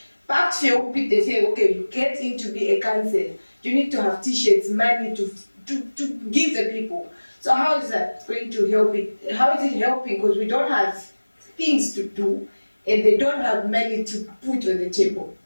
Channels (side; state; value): both; inverted; correlation -1.00